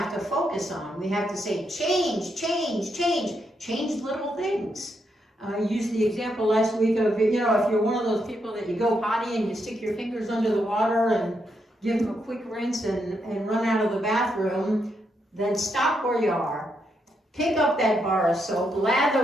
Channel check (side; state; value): both; normal; correlation 0.80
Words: to focus on. We have to say change, change, change, change little things. I used the example last week of, if you're one of those people that you go potty and you stick your fingers under the water and give them a quick rinse and run out of the bathroom, then stop where you are. Pick up that bar of soap,